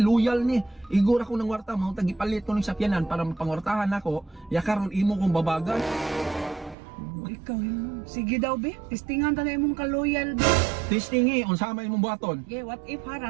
ni. Igor ako ng warta, mga tagipalit ko ng sakyanan para mapangwartahan ako, yakaron imo kong babagan. Ikaw yun. Sige daw be, testingan ta na imong ka-loyal be. Testingi, unsama imong buhaton. Okay, what if ha,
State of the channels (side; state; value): left; drops out; at 6.8 s